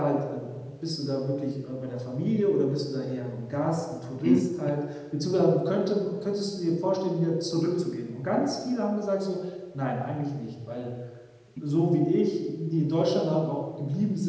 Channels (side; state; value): both; identical; correlation 1.00